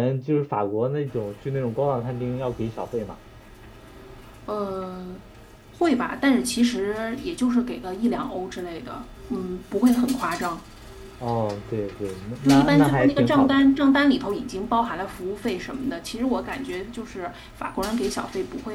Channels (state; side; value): identical; both; correlation 1.00